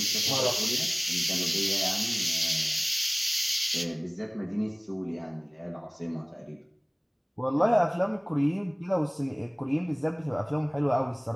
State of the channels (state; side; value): identical; both; correlation 1.00